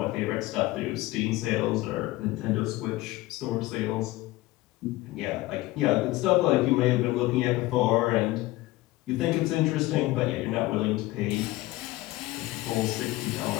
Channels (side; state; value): right; quieter; 18.6 dB